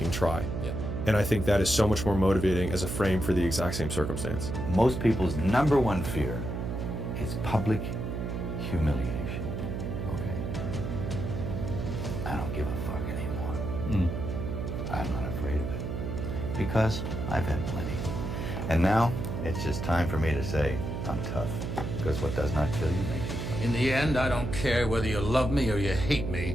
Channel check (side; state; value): right; noise; hum, 4 dB below the sound